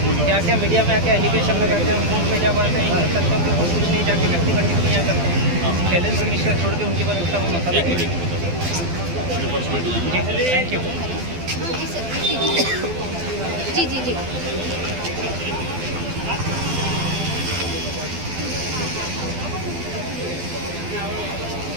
क्या क्या मीडिया में आके एलिगेशन लगाते हैं, कोर्ट में जब आते हैं इन तथ्यों के और कुछ नहीं जाके व्यक्तिगत टिप्पणियाँ करते हैं। शैलेंद्र मिश्रा छोड़ के उनके बाद दूसरा वो मसला है। Thank you. जी जी जी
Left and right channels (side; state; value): left; late; 12 ms